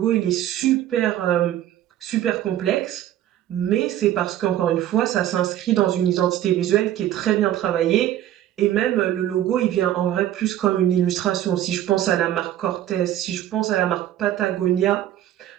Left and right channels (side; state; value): left; quieter; 12.4 dB